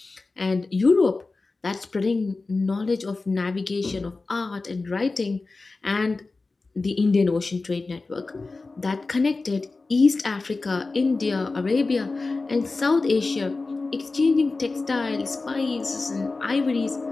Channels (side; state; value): right; quieter; 3.6 dB